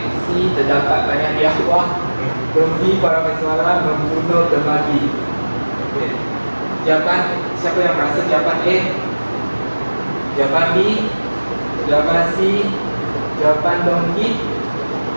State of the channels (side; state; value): both; inverted; correlation -1.00